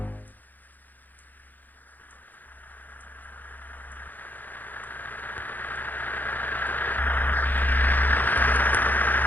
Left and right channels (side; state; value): right; late; 0.084 ms